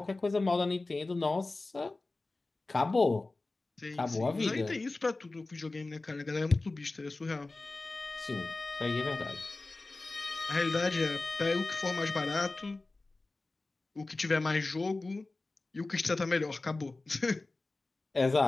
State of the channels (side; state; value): right; quieter; 3.2 dB